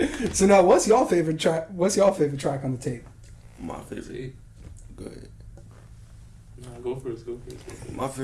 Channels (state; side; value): identical; both; correlation 1.00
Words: So now, what's your favorite track? What's your favorite track on the tape? My favorite. Go ahead. Nah, go first. My